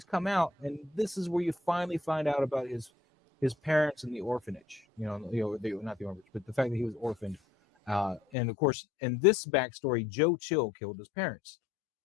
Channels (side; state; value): right; drops out; at 8.2 s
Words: come out, and this is where you finally find out about his parents in the orphanage. Not the orphanage, but the fact that he was orphaned. And of course, in this backstory, Joe Chill killed his parents.